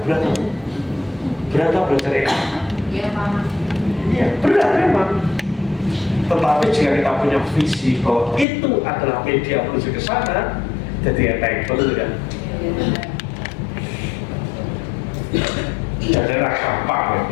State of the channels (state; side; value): drops out; right; at 8.5 s